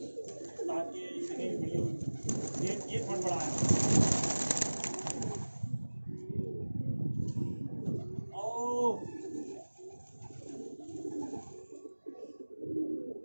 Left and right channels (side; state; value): both; inverted; correlation -1.00